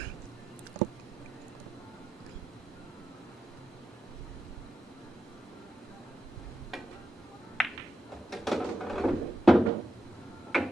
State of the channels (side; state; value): both; normal; correlation 0.87